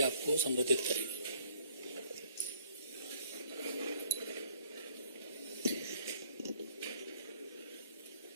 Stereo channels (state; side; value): inverted; both; correlation -0.59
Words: आपको संबोधित करेंगे।